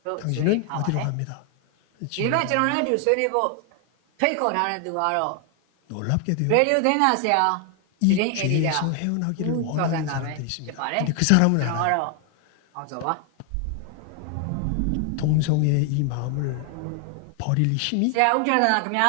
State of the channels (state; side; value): different; both; correlation 0.00